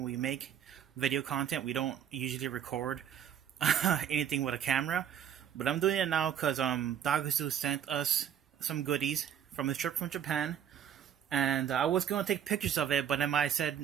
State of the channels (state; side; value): quieter; left; 9.2 dB